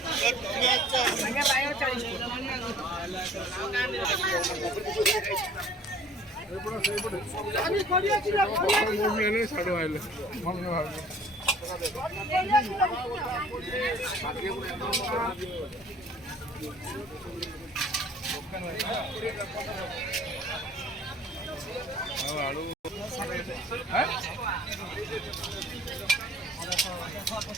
साढ़े आइले आलू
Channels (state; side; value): normal; both; correlation 0.51